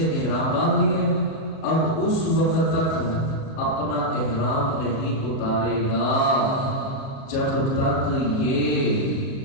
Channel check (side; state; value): right; late; 37 ms